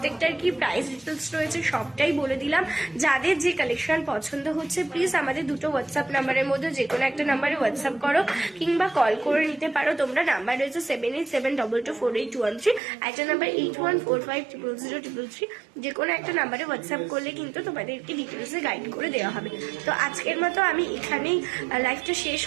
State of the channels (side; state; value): left; drops out; at 12.8 s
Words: কি প্রাইস ডিটেলস রয়েছে সবটাই বলে দিলাম। যাদের যে কালেকশন পছন্দ হচ্ছে প্লিজ আমাদের দুটো হোয়াটসঅ্যাপ নাম্বারের মধ্যে যে কোনো একটা নাম্বারে হোয়াটসঅ্যাপ করো কিংবা কল করে নিতে পারো তোমরা। নাম্বার রয়েছে 7872248113, একটা নাম্বার 8145000033। যে কোনো একটা নাম্বারে হোয়াটসঅ্যাপ করলে কিন্তু তোমাদেরকে ডিটেলসে গাইড করে দেওয়া হবে। তো আজকের মতো আমি এখানেই লাইভটা শেষ